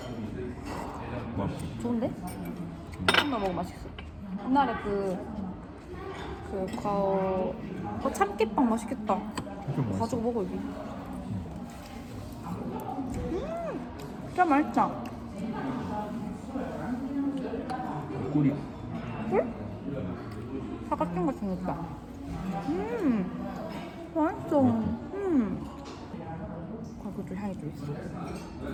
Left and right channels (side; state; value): both; identical; correlation 1.00